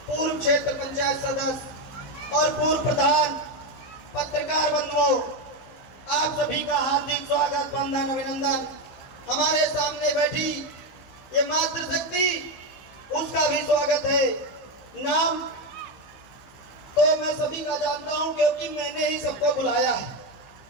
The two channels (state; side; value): late; right; 16 ms